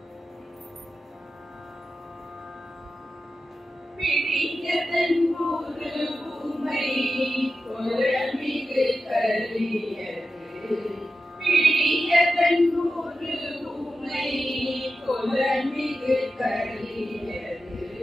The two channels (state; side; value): normal; both; correlation 0.91